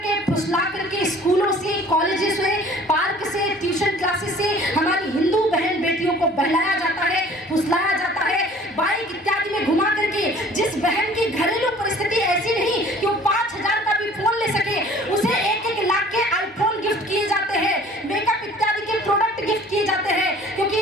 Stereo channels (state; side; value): normal; both; correlation 0.50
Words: फुसला करके स्कूलों से, कॉलेजेस से, पार्क से, ट्यूशन क्लासेस से हमारी हिंदू बहन बेटियों को बहलाया जाता है, फुसलाया जाता है, बाइक इत्यादि में घुमा करके। जिस बहन की घरेलू परिस्थिति ऐसी नहीं कि वो 5,000 का भी फोन ले सके, उसे 1-1 लाख के आईफोन गिफ्ट किए जाते हैं, मेकअप इत्यादि के प्रोडक्ट गिफ्ट किए जाते हैं, क्योंकि